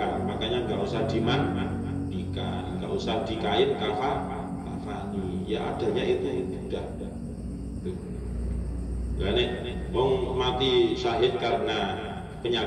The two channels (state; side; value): identical; both; correlation 1.00